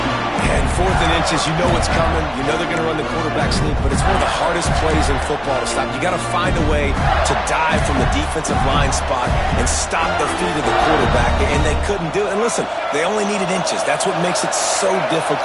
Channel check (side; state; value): both; identical; correlation 1.00